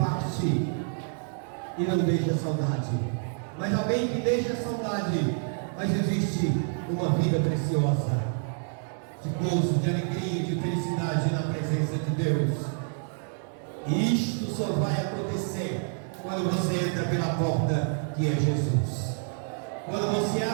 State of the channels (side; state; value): left; silent; 55 dB below the other